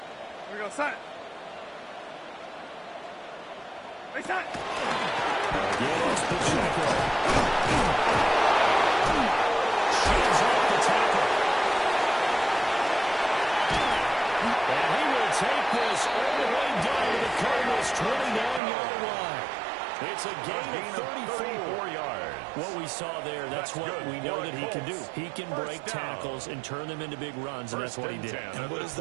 we go, set. Hey, set. Again, it's Pacheco. Shields off the tackle. And he will take this all the way down to the Cardinals' 29-yard line. It's a gain of 34 yards. What we saw there, that's what we know that he can do. He can break tackles and turn them into big runs, and that's what he did. And what is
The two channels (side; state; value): left; drops out; at 18.6 s